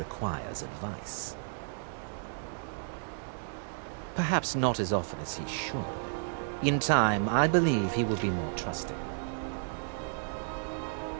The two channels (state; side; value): silent; left; digital silence